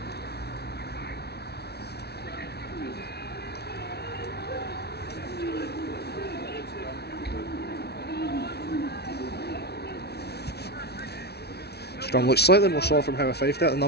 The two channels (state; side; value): late; right; 0.48 ms